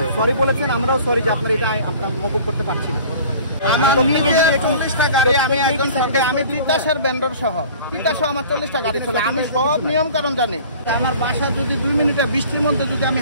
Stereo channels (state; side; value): inverted; both; correlation -0.46